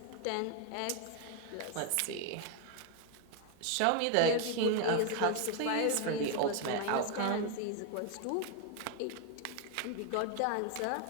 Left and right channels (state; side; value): different; both; correlation 0.01